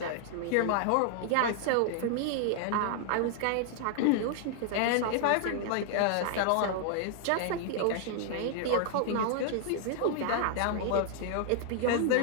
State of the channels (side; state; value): both; different; correlation 0.00